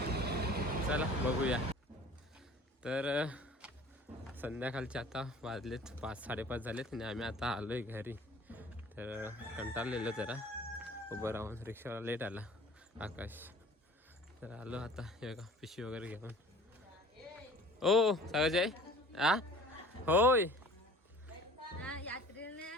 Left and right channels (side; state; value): both; normal; correlation 0.47